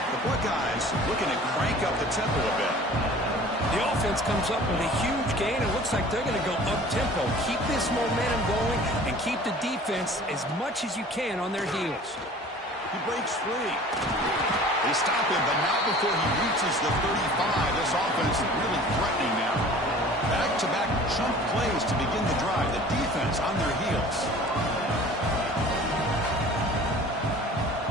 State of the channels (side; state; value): both; normal; correlation 0.46